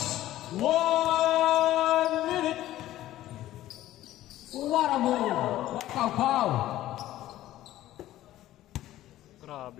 1 minute! What a move! Pow pow!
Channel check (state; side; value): quieter; right; 14.4 dB